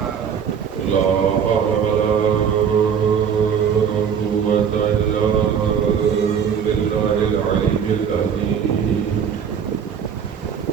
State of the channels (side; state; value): left; quieter; 7.4 dB